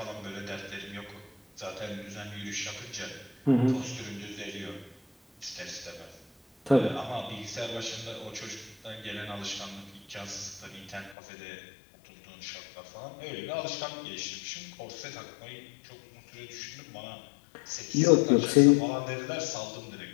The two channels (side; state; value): right; drops out; at 11.2 s